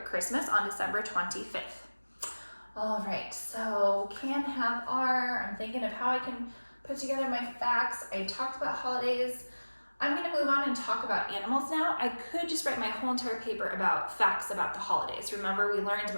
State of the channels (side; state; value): both; inverted; correlation -1.00